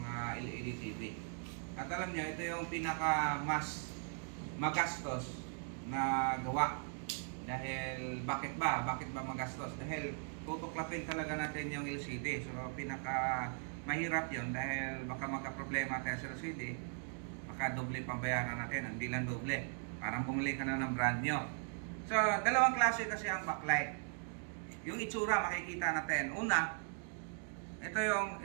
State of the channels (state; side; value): silent; left; 52 dB below the other